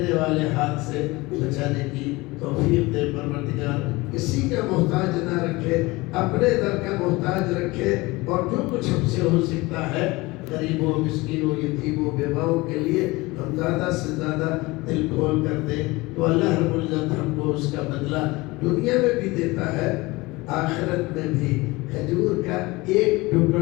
والے ہاتھ سے بچانے کی توفیق دے پروردگار، کسی کا محتاج نہ رکھے، اپنے در کا محتاج رکھے، اور جو کچھ ہم سے ہو سکتا ہے غریبوں، مسکینوں، یتیموں، بیواؤں کے لیے ہم زیادہ سے زیادہ دل کھول کر دیں، تو اللہ رب العزت ہم کو اس کا بدلہ دنیا میں بھی دیتا ہے، آخرت میں بھی۔ کھجور کا ایک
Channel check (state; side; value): quieter; right; 22.1 dB